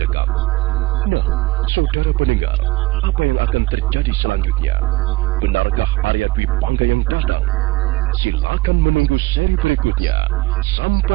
Nah, saudara pendengar, apa yang akan terjadi selanjutnya? Benarkah Arya Dwi Pangga yang datang? Silakan menunggu seri berikutnya.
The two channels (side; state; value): left; quieter; 19.3 dB